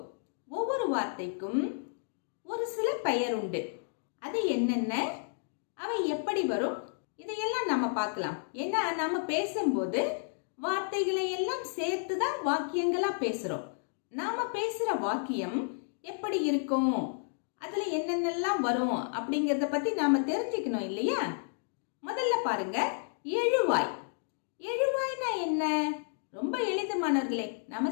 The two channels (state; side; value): silent; right; digital silence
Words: ஒவ்வொரு வார்த்தைக்கும் ஒரு சில பெயர் உண்டு. அது என்னென்ன, அவை எப்படி வரும், இதையெல்லாம் நம்ம பார்க்கலாம். ஏன்னா நம்ம பேசும்போது வார்த்தைகளை எல்லாம் சேர்த்துதான் வாக்கியங்களா பேசுறோம். நாம பேசுற வாக்கியம் எப்படி இருக்கும், அதுல என்னென்னலாம் வரும் அப்படிங்கறத பத்தி நாம தெரிஞ்சுக்கணும் இல்லையா? முதல்ல பாருங்க, எழுவாய். எழுவாய்னா என்ன? ரொம்ப எளிது மாணவர்களே. நம்ம